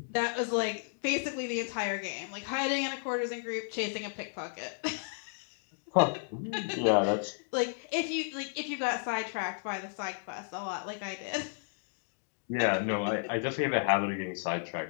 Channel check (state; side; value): silent; right; digital silence